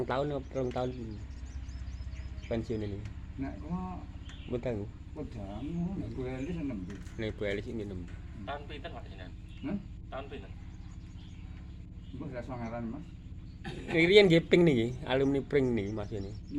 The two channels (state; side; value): identical; both; correlation 1.00